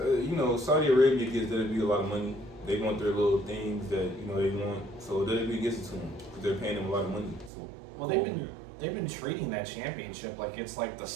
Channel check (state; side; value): drops out; left; at 7.5 s